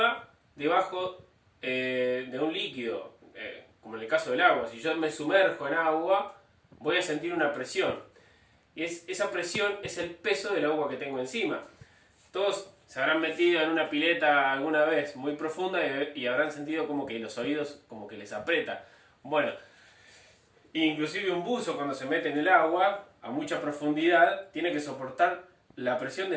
debajo de un líquido, como en el caso del agua. Si yo me sumerjo en agua, voy a sentir una presión. Y esa presión es el peso del agua que tengo encima. Todos se habrán metido en una pileta alguna vez muy profunda y habrán sentido como que los oídos como que les aprieta. Bueno, inclusive un buzo cuando se mete en el agua a mucha profundidad tiene que soportar la presión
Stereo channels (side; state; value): both; identical; correlation 1.00